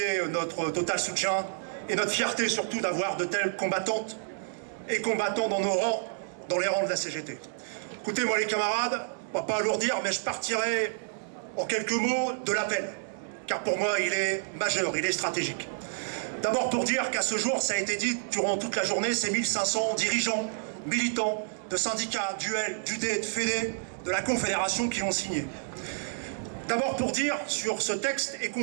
notre total soutien et notre fierté surtout d'avoir de telles combattantes et combattants dans nos rangs, dans les rangs de la CGT. Écoutez-moi les camarades, on va pas alourdir, mais je partirai en quelques mots de l'appel, car pour moi il est majeur, il est stratégique. D'abord pour dire qu'à ce jour, ça a été dit durant toute la journée, ces 1500 dirigeants, militants de syndicats, d'UL, d'UD, de FEDE, de la Confédération qui l'ont signé. D'abord pour dire sur ce texte et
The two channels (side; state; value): left; silent; digital silence